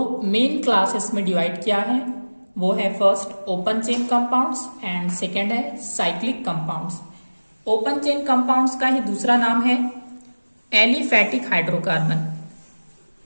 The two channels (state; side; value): inverted; both; correlation -1.00